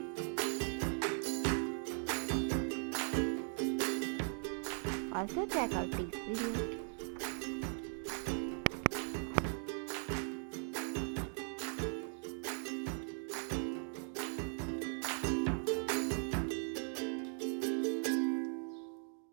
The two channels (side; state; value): left; silent; 52 dB below the other